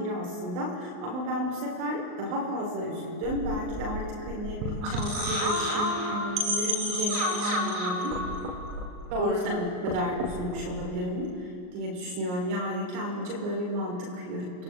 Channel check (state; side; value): late; left; 39 ms